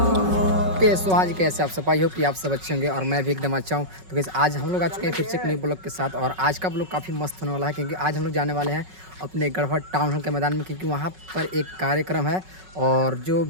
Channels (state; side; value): late; left; 5.4 ms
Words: सो आज कैसे आप सफाई हो कि आप सब अच्छे होंगे और मैं भी एकदम अच्छा हूँ। तो कैसे आज हम लोग आ चुके हैं फिर से एक नई ब्लॉग के साथ और आज का ब्लॉग काफ़ी मस्त होने वाला है क्योंकि आज हम लोग जाने वाले हैं अपने गढ़वा टाउन हॉल के मैदान में क्योंकि वहाँ पर एक कार्यक्रम है और जो